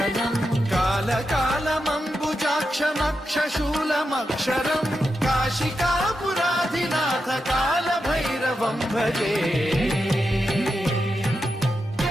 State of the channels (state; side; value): normal; both; correlation 0.87